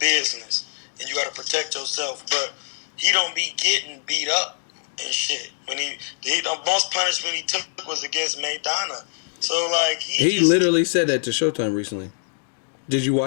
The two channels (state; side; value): silent; right; 63 dB below the other